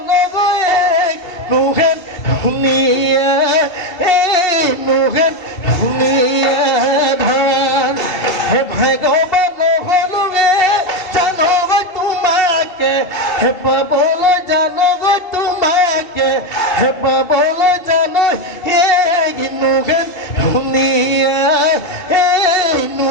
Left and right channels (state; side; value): late; right; 2.7 ms